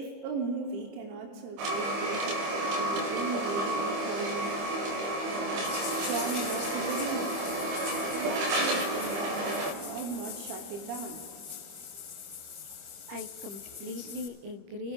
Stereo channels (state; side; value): late; left; 25 ms